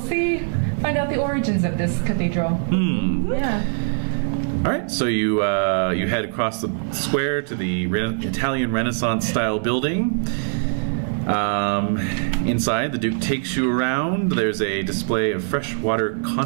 find out the origins of this cathedral. Yeah. All right, so you head across the square to the Italian Renaissance style building. Inside, the Duke takes you around. There's a display of freshwater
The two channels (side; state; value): left; silent; 56 dB below the other